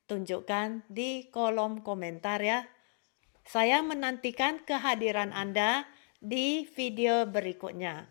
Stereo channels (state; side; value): silent; right; 56 dB below the other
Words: Tunjukkan di kolom komentar ya. Saya menantikan kehadiran Anda di video berikutnya.